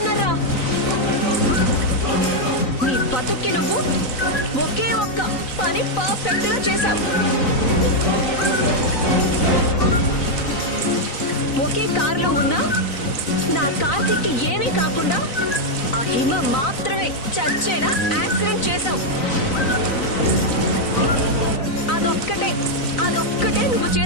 నీ బతుక్కి నువ్వు ఒకే ఒక్క పని పర్ఫెక్ట్ గా చేశావు. ఒకే కారులో ఉన్నా నా కార్తీక్కి ఏమీ కాకుండా ఆ హిమ మాత్రమే చచ్చేలా యాక్సిడెంట్ చేశావు. అదొక్కటే నువ్వు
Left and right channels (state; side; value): late; right; 3.9 ms